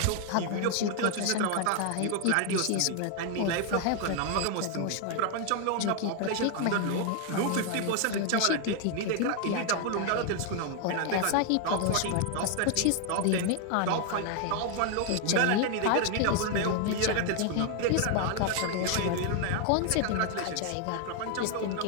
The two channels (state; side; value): different; both; correlation 0.00